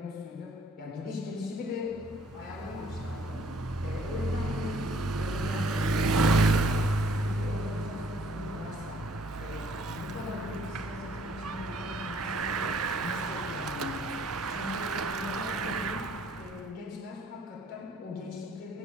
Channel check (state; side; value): normal; both; correlation 0.61